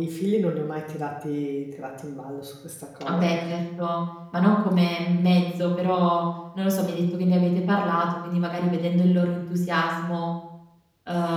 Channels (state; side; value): identical; both; correlation 1.00